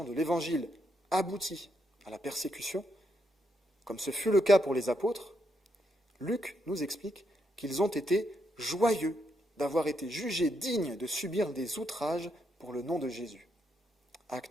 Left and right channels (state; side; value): normal; both; correlation 0.79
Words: de l'évangile aboutit à la persécution, comme ce fut le cas pour les apôtres, Luc nous explique qu'ils ont été joyeux d'avoir été jugés dignes de subir des outrages pour le nom de Jésus.